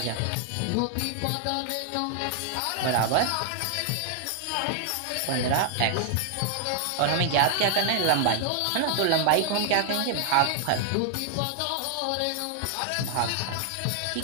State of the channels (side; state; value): both; different; correlation 0.00